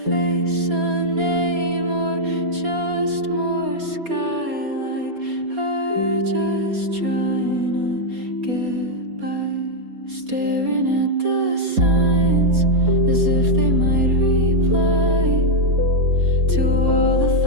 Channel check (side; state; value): left; late; 4.2 ms